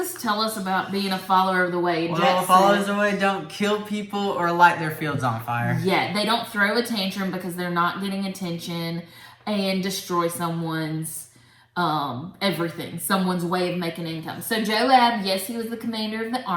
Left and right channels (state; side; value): identical; both; correlation 1.00